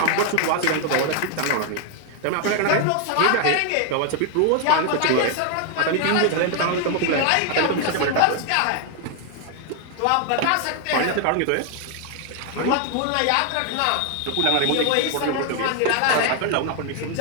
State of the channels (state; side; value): different; both; correlation 0.00